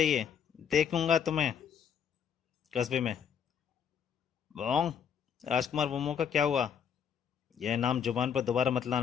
देखूंगा तुम्हें कस्बे में। बोंग, राजकुमार वोमो का क्या हुआ? यह नाम जुबान पर दोबारा मत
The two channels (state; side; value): quieter; right; 7.8 dB